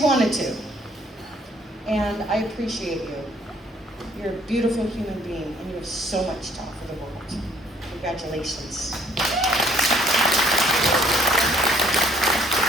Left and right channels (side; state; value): both; normal; correlation 0.62